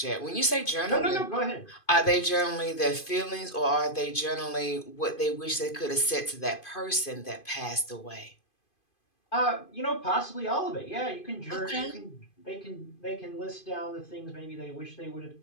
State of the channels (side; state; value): right; late; 2.5 ms